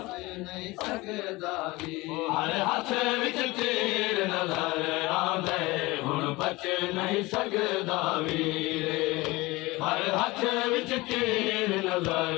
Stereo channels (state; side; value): quieter; right; 21.7 dB